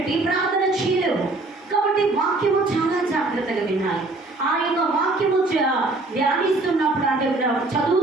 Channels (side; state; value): left; quieter; 3.1 dB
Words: ప్రార్థన చేయలేవు. కాబట్టి వాక్యము చాలా జాగ్రత్తగా వినాలి. ఆ యొక్క వాక్యము ధ్యానిస్తున్నప్పుడు, అంటే